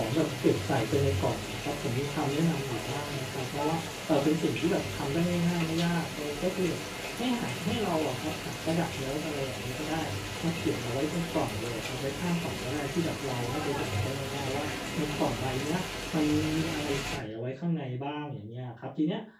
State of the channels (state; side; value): identical; both; correlation 1.00